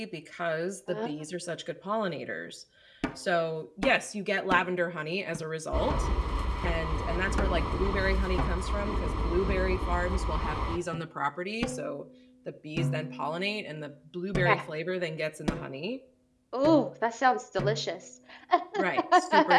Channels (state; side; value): identical; both; correlation 1.00